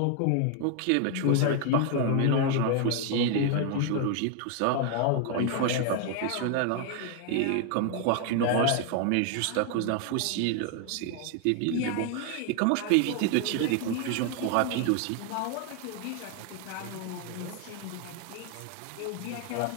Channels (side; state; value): both; different; correlation 0.01